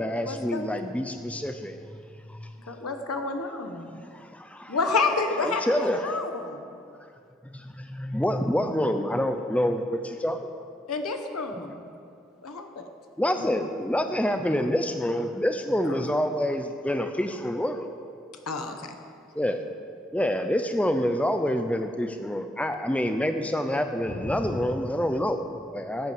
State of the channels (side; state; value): both; normal; correlation 0.75